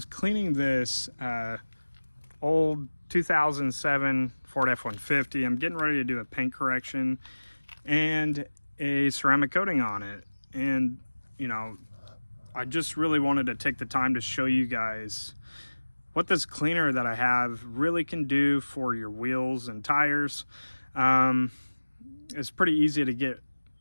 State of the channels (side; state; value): both; inverted; correlation -1.00